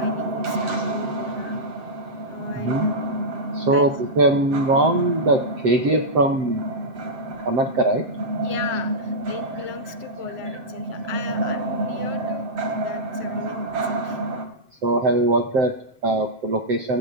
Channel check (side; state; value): left; late; 7.6 ms